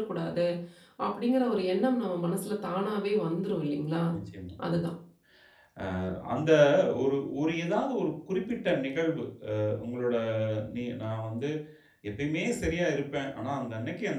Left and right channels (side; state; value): both; identical; correlation 1.00